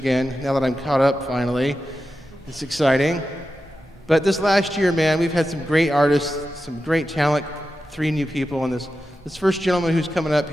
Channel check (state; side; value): normal; both; correlation 0.91